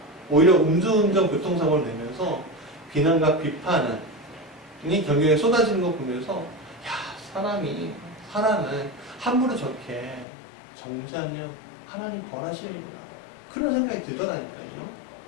오히려 음주운전 교통사고를 내면서 비난과 비판이 경경에 쏟아지는 거 보면서 사람을 함부로 저렇게 정죄하면 하나님 벌하시는구나, 그런 생각이 들더라니까요.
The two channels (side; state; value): right; drops out; at 10.2 s